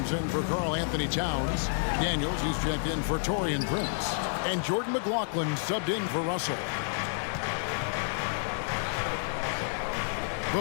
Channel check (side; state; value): right; silent; 58 dB below the other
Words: in for Karl Anthony Towns. Daniels, he's checked in for Taurean Prince. And Jordan McLaughlin subbed in for Russell.